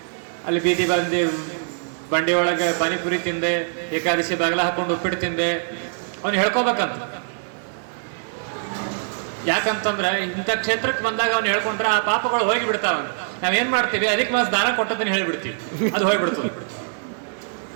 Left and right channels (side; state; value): left; silent; digital silence